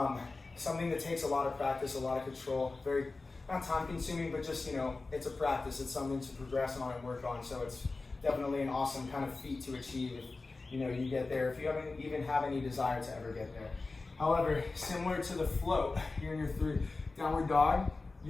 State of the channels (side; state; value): right; quieter; 3.6 dB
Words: Something that takes a lot of practice, a lot of control, very, not time consuming, but just, it's a practice. It's something to progress on and work on. So it's definitely an awesome kind of feat to achieve if, you get there, if you even have any desire to ever get there. However, similar to the float, you're in your 3 downward dog.